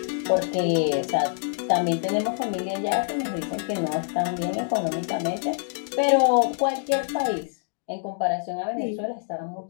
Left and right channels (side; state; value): right; silent; digital silence